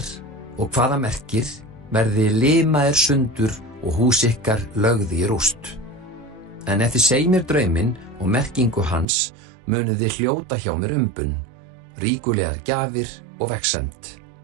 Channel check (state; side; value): drops out; left; at 9.1 s